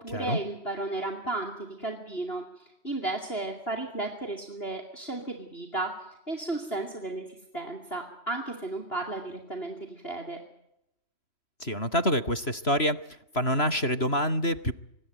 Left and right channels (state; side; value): late; right; 3.0 ms